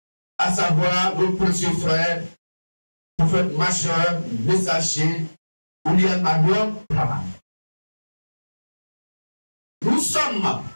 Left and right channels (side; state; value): both; inverted; correlation -1.00